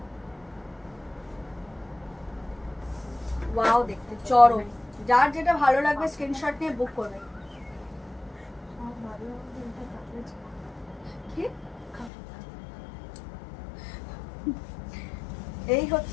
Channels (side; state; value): right; drops out; at 12.1 s